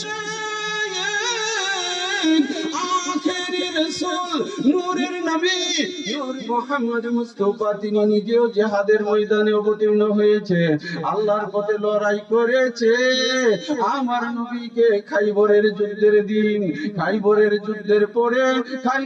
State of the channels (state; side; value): identical; both; correlation 1.00